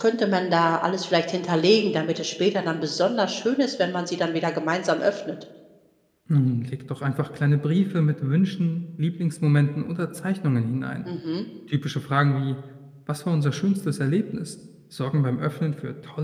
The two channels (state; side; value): identical; both; correlation 1.00